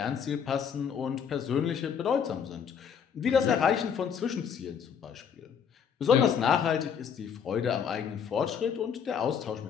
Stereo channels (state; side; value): quieter; right; 7.4 dB